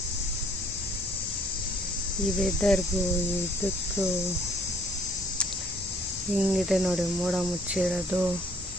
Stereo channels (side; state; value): both; normal; correlation 0.61